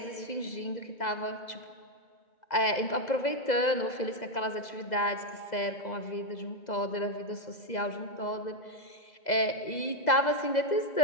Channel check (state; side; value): late; right; 2.0 ms